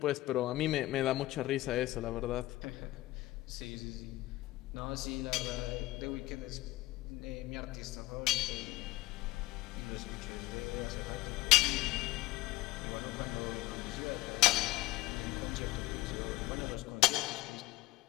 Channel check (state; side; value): quieter; right; 18.6 dB